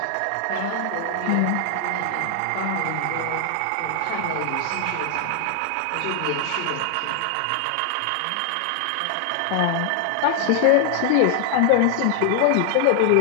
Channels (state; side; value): different; both; correlation 0.00